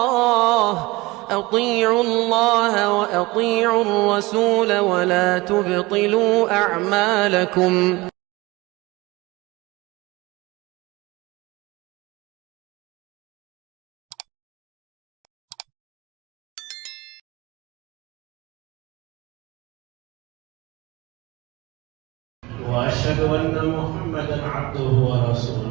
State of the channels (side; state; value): left; quieter; 21.9 dB